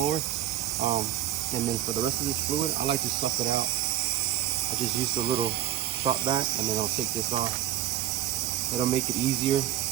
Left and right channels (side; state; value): left; quieter; 12.1 dB